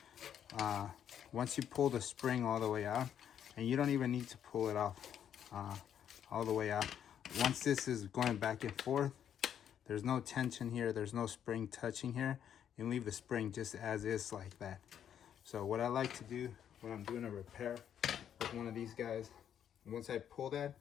Once you pull the spring all the way out, and you don't even need to pull it off all the way out. Once this is going back and forth, there's no tension here, there's no spring touching here. You leave the spring just as is like that. So what I like to do when I'm doing a repair with one of these guys, once I pull that,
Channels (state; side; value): quieter; right; 9.3 dB